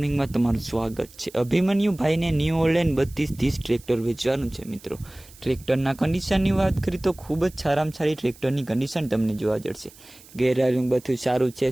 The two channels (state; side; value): noise; right; hiss, 23 dB below the sound